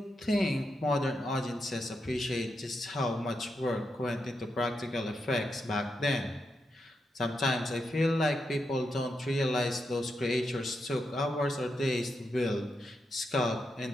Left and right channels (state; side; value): normal; both; correlation 0.84